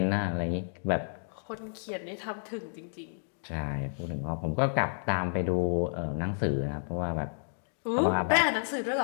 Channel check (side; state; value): right; silent; digital silence